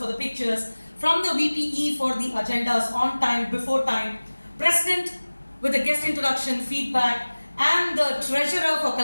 the pictures, from the VPE for the agendas on time, before time, President with the guest introduction, feedback, and the treasurer for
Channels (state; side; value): inverted; both; correlation -1.00